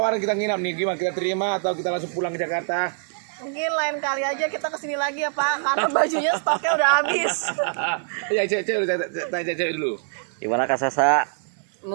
kita nginap nih, gimana kita terima atau kita langsung pulang ke Jakarta? Mungkin lain kali aja kita kesini lagi ya Pak, karena bajunya stoknya udah habis. Ya, tanya cewek dulu. Gimana Kak Sasa?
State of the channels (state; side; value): silent; left; 59 dB below the other